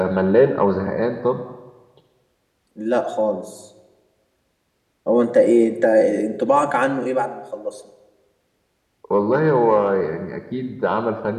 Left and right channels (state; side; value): identical; both; correlation 1.00